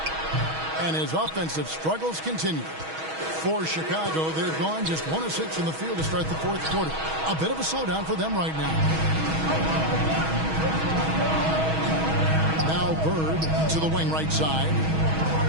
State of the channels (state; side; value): late; left; 6.3 ms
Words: And his offensive struggles continue. For Chicago, they've gone just 1 of 6 from the field to start the fourth quarter. A bit of a slowdown for them right now. Now Bird to the wing right side.